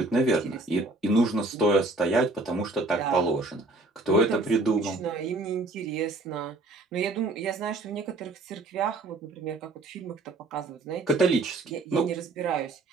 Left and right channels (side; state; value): left; quieter; 3.1 dB